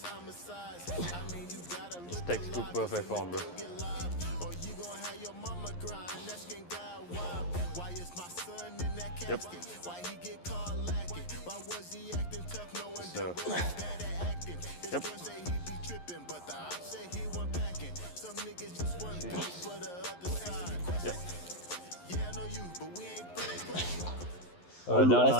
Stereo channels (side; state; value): right; late; 11 ms